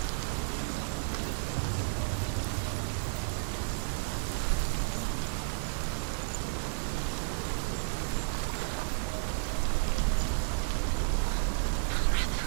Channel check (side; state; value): left; silent; digital silence